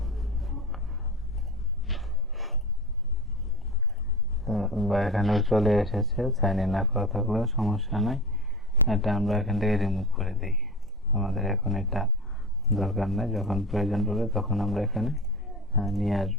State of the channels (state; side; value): normal; both; correlation 0.30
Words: বা এখানেও চলে এসেছে, সাইন ইন না করা থাকলেও সমস্যা নাই। এটা আমরা এখান থেকে রিমুভ করে দিই, আমাদের এখন এটা দরকার নেই। যখন প্রয়োজন পড়বে তখন আমরা এখানে নিয়ে